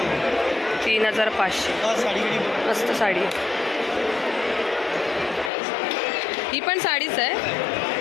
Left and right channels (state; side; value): drops out; right; at 5.5 s